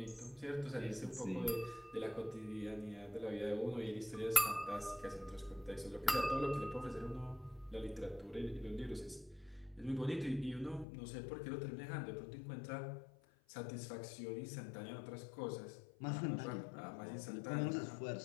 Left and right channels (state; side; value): drops out; right; at 10.9 s